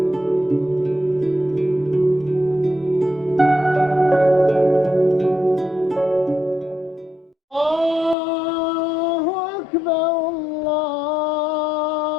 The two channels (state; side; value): drops out; right; at 8.2 s